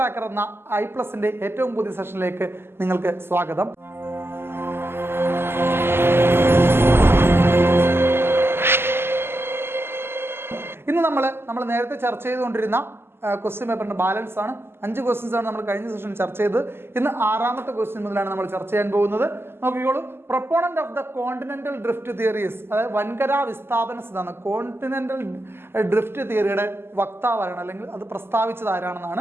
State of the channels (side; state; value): left; late; 0.12 ms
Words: എന്ന ഐ+ന്റെ ഏറ്റവും പുതിയ സെഷനിലേക്ക് നിങ്ങൾക്ക് സ്വാഗതം. ഇന്ന് നമ്മൾ നേരത്തെ ചർച്ച ചെയ്തുകൊണ്ടിരുന്ന ക്വസ്റ്റ്യൻ പേപ്പറിന്റെ ബാലൻസ് ആണ്. 5 ക്വസ്റ്റ്യൻസ് ആണ് നമ്മൾ കഴിഞ്ഞ സെഷനിൽ ചർച്ച ചെയ്തത്. ഇന്ന് 6ാമത്തെ ക്വസ്റ്റ്യൻ മുതലാണ് നമ്മൾ ചർച്ച ചെയ്യാൻ പോകുന്നത്. നോക്കിക്കോളൂ. Proponent of the continental drift theories, അതായത് വൻകരാ വിസ്ഥാപന സിദ്ധാന്തം, കോണ്ടിനെന്റൽ ഡ്രിഫ്റ്റ് തിയറിയുടെ വക്താവാണ് അല്ലെങ്കിൽ അത് പ്രസ്താവിച്ചത്